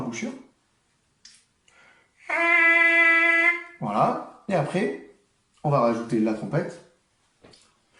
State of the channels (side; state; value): both; identical; correlation 1.00